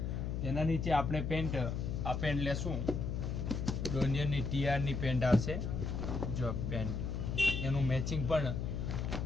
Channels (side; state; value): left; noise; hum, 2 dB below the sound